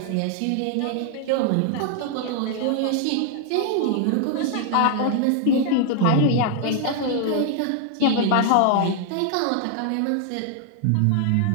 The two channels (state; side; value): different; both; correlation 0.00